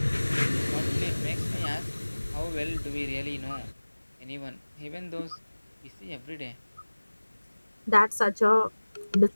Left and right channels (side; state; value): both; inverted; correlation -1.00